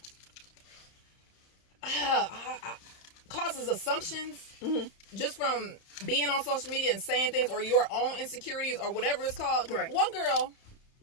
causes assumptions just from being on social media and saying things, or your own insecurities, or whatever it's called. Right. One girl,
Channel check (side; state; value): right; late; 31 ms